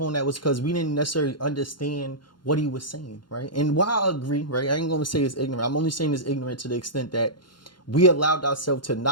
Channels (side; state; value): right; late; 0.71 ms